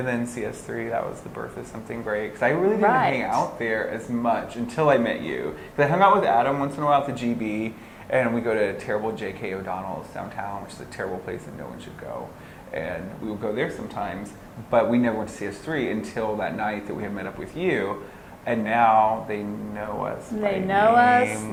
then CS3, that was the birth of something great. Because I really didn't Right. hang out there as much until I met you. Because I hung out with Adam once in a while at the GB, and we go to terrible J.K. O'Donnell's downtown, which is a terrible place that no one should go. And we would go there sometimes, but we never went to CS3 until that night that we had met up with you. And now they know us. They by know us.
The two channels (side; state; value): both; identical; correlation 1.00